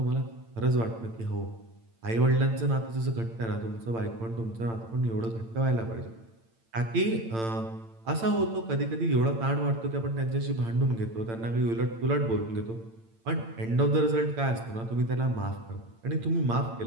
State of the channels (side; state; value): left; late; 8.9 ms